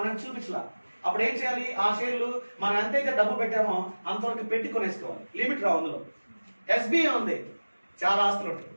చూపించలా. అప్పుడు ఏం చేయాలి? ఆ షేర్లు మనం ఎంతైతే డబ్బు పెట్టామో అంతవరకు పెట్టి కొనేసుకోవాలి. లిమిట్ రావు అందులో. ఎస్బీఐ ఉంది, చాలా ఆస్తులు ఉంటాయి.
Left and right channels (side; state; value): both; inverted; correlation -1.00